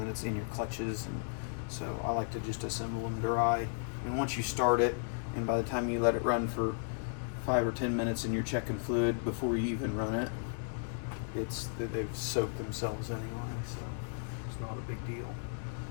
it's in your clutches, and so I like to just assemble them dry. And once you start it, and by the time you let it run for 5 or 10 minutes and you're checking fluid before you even run it, it's that they've soaked themselves anyway, so it's not a big deal.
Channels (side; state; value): right; silent; digital silence